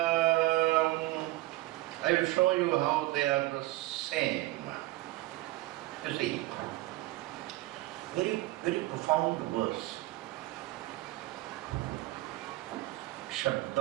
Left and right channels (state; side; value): quieter; left; 18.6 dB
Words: I will show you how they are the same. You see, very, very profound verse.